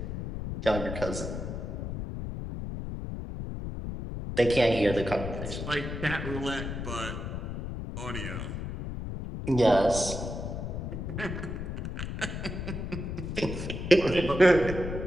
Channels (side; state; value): left; noise; rumble, 5 dB below the sound